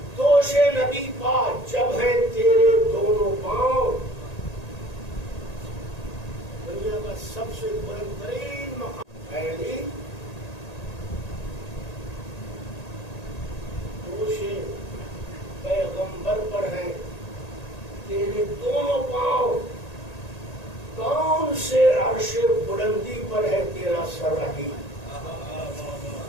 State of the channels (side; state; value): right; late; 1.8 ms